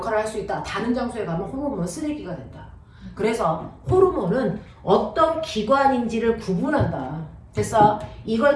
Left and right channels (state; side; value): identical; both; correlation 1.00